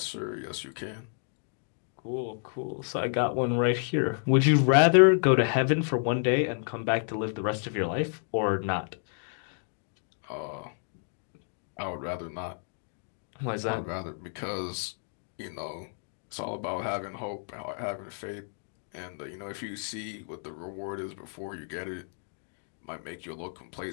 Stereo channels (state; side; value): silent; right; 57 dB below the other